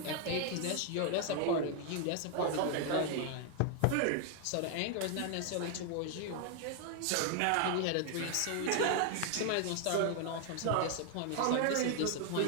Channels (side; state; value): both; different; correlation 0.00